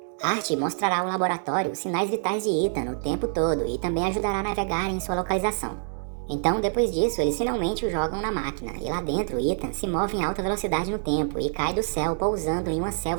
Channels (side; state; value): left; silent; 61 dB below the other